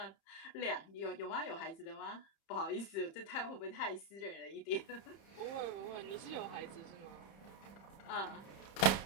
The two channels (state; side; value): late; right; 30 ms